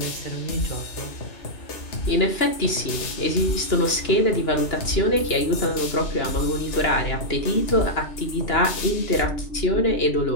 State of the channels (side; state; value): right; late; 2.9 ms